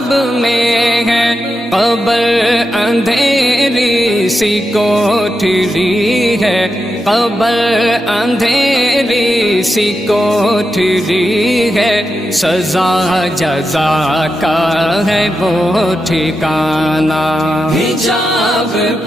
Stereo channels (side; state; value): both; normal; correlation 0.88